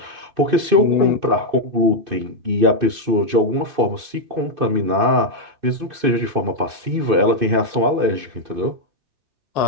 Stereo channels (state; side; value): late; left; 2.6 ms